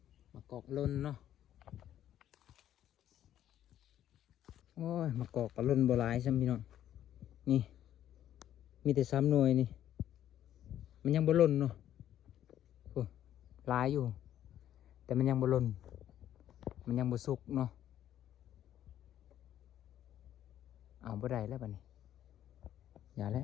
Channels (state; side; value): quieter; right; 11.4 dB